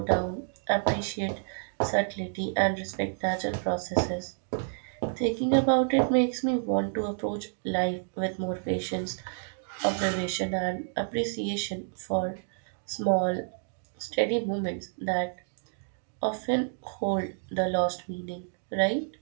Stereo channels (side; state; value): left; silent; digital silence